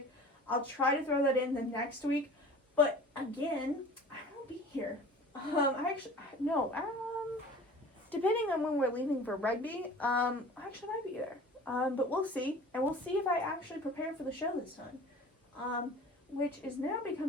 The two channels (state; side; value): normal; both; correlation 0.43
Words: I'll try to throw that in the next week, but again, I won't be here. Depending on when we're leaving for rugby, I actually might be there. But we'll see, and we'll see if I actually prepare for the show this time. Which is now